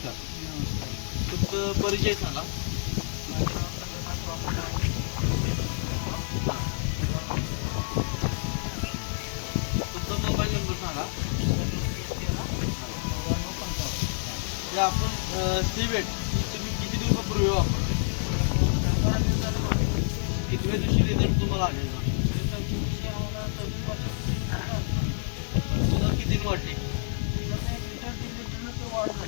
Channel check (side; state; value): right; silent; digital silence